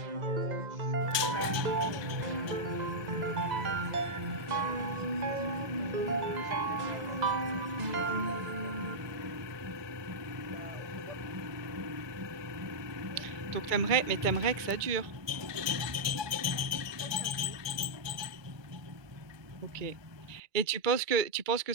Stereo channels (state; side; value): late; left; 1.2 ms